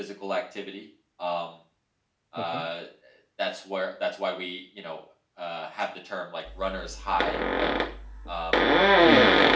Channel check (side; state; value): both; identical; correlation 1.00